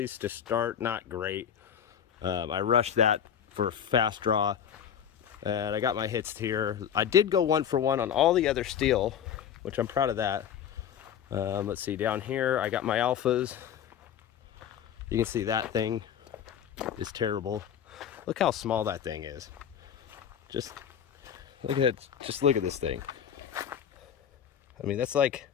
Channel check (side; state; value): right; quieter; 8.8 dB